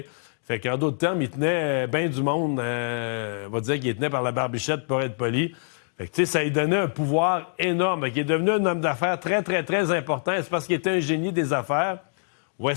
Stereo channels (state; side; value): silent; right; digital silence